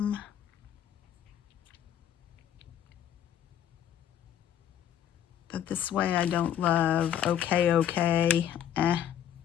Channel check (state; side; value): quieter; right; 10.0 dB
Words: But this way I don't love. Okay.